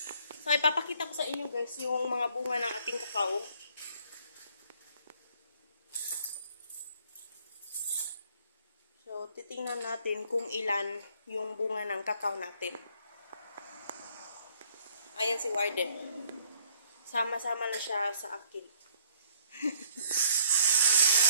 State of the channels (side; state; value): both; inverted; correlation -0.63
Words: So ipapakita ko sa inyo guys yung mga bunga ng ating kakao. So, titingnan natin kung ilan yung bunga ng kakao natin. Ayan si Warden. Sama-sama na siya sa akin.